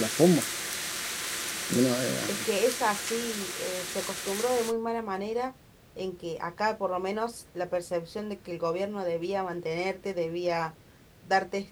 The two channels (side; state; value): both; identical; correlation 1.00